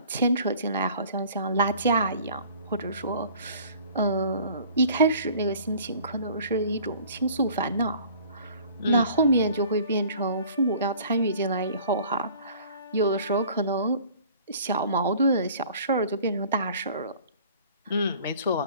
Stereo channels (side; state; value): both; inverted; correlation -0.50